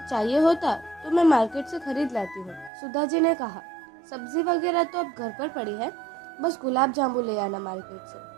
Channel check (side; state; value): left; drops out; at 2.7 s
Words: चाहिए होता तो मैं मार्केट से खरीद लाती हूँ। सुधा जी ने कहा, सब्जी वगैरह तो अब घर पर पड़ी है, बस गुलाब जामुन ले आना मार्केट से।